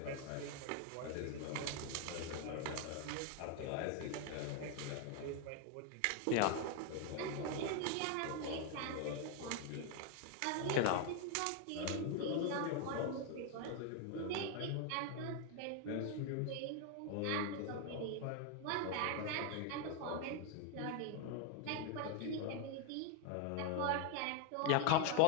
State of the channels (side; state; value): both; different; correlation 0.00